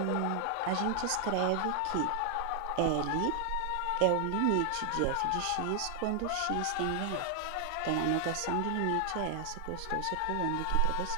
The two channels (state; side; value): different; both; correlation 0.00